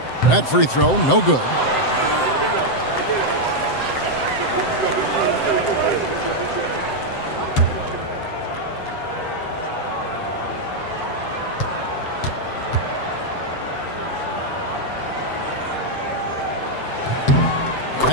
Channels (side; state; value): right; late; 7.8 ms